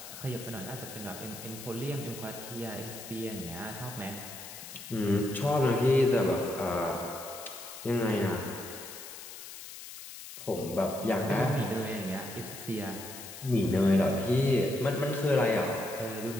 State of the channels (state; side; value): noise; left; hiss, 12 dB below the sound